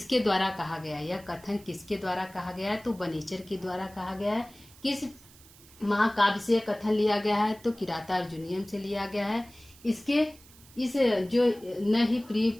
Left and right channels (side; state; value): right; noise; hiss, 23 dB below the sound